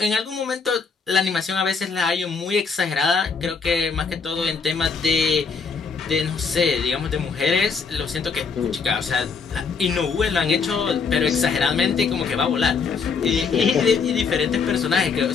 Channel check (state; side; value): quieter; right; 5.3 dB